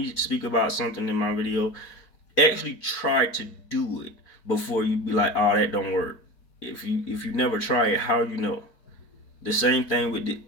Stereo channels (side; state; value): right; late; 4.7 ms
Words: speak about something in my video, actually try to do it before you be like, oh, that don't work. If you never try it, how you know? The same thing with the